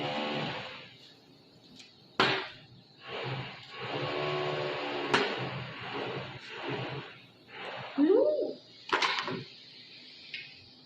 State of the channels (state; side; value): identical; both; correlation 1.00